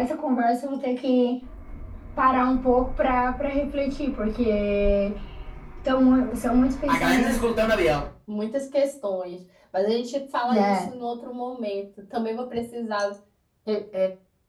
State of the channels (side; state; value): both; identical; correlation 1.00